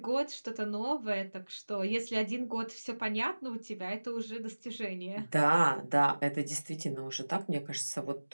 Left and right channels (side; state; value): both; inverted; correlation -1.00